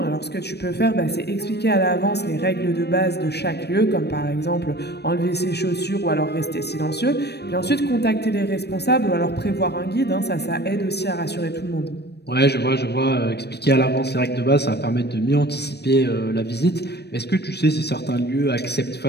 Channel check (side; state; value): right; late; 0.48 ms